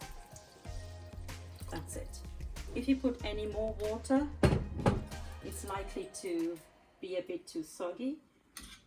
That's it. If you put any more water, it's likely to be a bit too soggy,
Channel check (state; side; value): identical; both; correlation 1.00